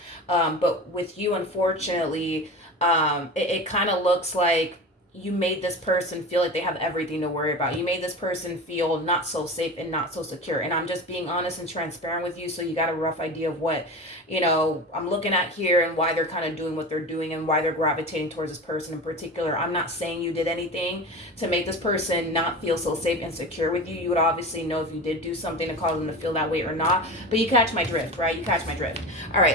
But with you, unfortunately, it kind of looks like you made this person feel like they have everything to worry about. You made this person feel not so safe and not so secure. And I'm just being honest and transparent with you, so you got a rough idea of what, you know, I'm looking at here and why they're kind of doing what they're doing and why they're gravitating towards this person in particular. I'm not saying you did anything to make this person not feel so safe and secure with you. You would obviously know if you did do something to cause them to feel that way or not. But you catch my drift, right? You catch my drift. All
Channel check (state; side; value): normal; both; correlation 0.30